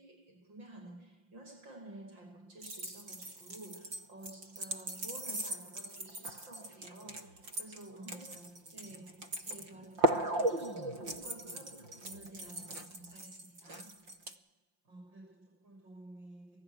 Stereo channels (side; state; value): left; late; 5.7 ms